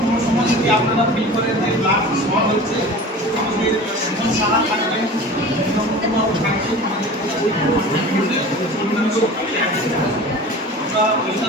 কোনো সময় যদি আপনারা ফিল করেন যে ব্লাড শর্ট হচ্ছে, আমাদের সুমন সাহা থাকবেন, বিনমকুমার থাকবেন, আমাদের আমরা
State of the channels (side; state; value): both; normal; correlation 0.37